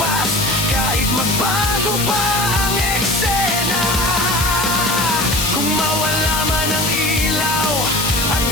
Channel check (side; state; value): left; noise; hiss, 3 dB below the sound